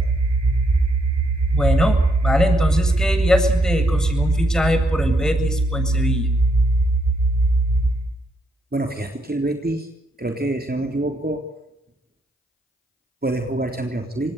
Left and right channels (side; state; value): both; normal; correlation 0.76